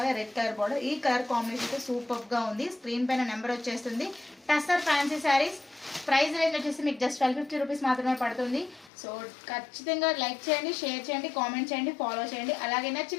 a red colour border. ఈ కలర్ కాంబినేషన్ సూపర్గా ఉంది. స్క్రీన్ పైన నెంబర్ వచ్చేస్తుంది. Tussar fancy saris. Price range వచ్చేసి మీకు జస్ట్ 1250 రూపీస్ మాత్రమే పడుతుంది. సో ఖచ్చితంగా లైక్ చేయండి, షేర్ చేయండి, కామెంట్ చేయండి, ఫాలో చేయండి. అలాగే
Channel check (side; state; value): right; drops out; at 8.9 s